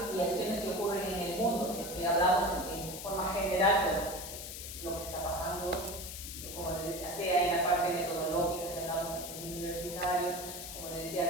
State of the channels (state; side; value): noise; left; hiss, 8 dB below the sound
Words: y acciones que ocurren en el mundo, si es que hablamos en forma general, pero lo que está pasando, como les decía, sea en la parte metodológica, si hablamos del universitario, como les